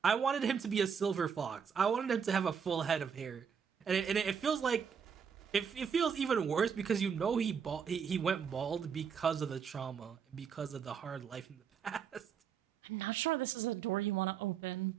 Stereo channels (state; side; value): quieter; left; 7.0 dB